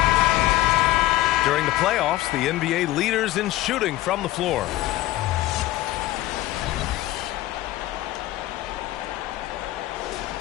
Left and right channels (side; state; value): right; quieter; 15.9 dB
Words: During the playoffs, the NBA leaders in shooting from the floor.